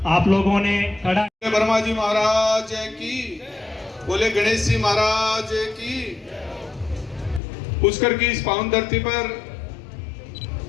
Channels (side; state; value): right; drops out; at 7.4 s